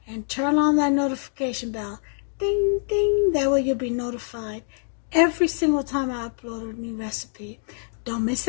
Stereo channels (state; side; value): silent; right; digital silence